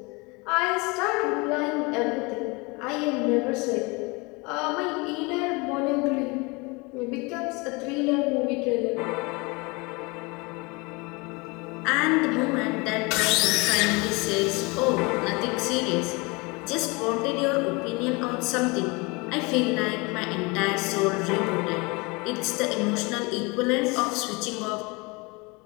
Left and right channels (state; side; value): quieter; right; 27.1 dB